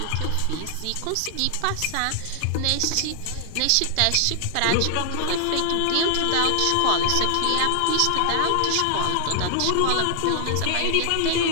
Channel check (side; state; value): both; different; correlation 0.00